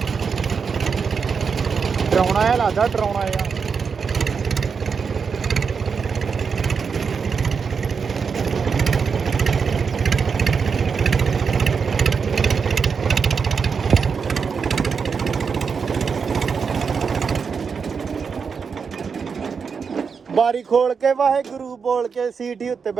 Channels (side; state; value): left; quieter; 5.8 dB